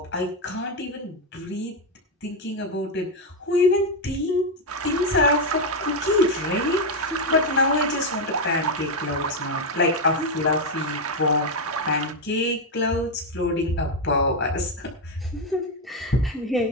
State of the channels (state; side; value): normal; both; correlation 0.05